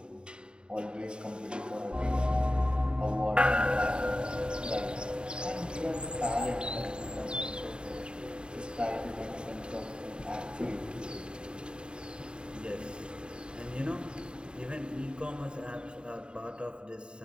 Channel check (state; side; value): late; left; 0.050 ms